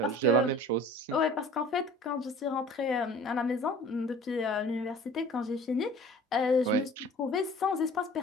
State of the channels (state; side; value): normal; both; correlation 0.46